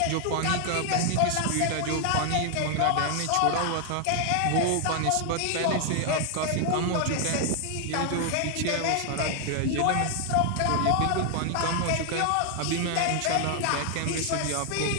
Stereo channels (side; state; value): both; different; correlation 0.00